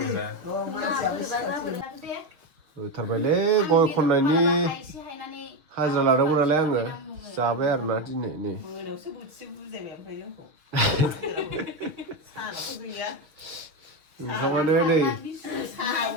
होथारबायलै गय खननायनि हाजिरा लादोंमोन नालाय आङो जाबाय आरोना दिनै नै ओंखामानो नै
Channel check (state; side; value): late; left; 6.8 ms